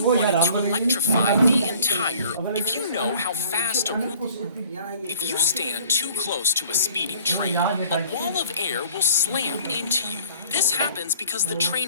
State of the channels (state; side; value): inverted; both; correlation -0.51